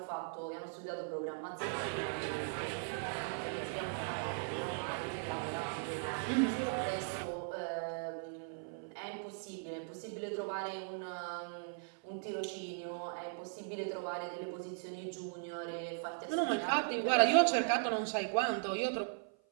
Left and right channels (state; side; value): silent; left; 52 dB below the other